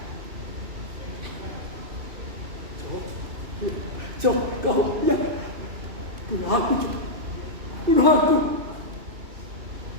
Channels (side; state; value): left; late; 2.7 ms